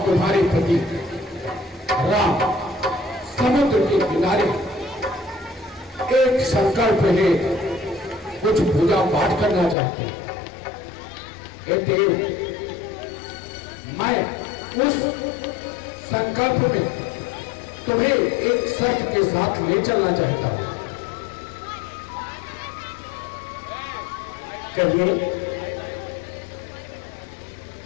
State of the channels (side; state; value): right; drops out; at 9.8 s